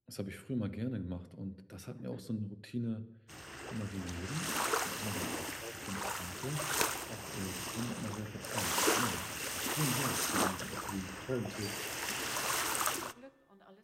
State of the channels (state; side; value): identical; both; correlation 1.00